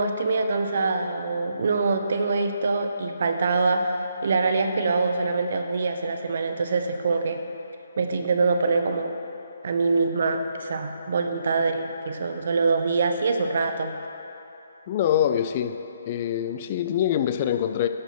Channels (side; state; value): both; inverted; correlation -0.72